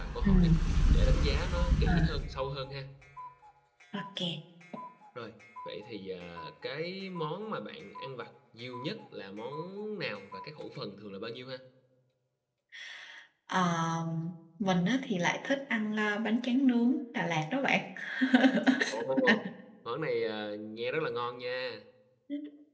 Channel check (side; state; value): both; identical; correlation 1.00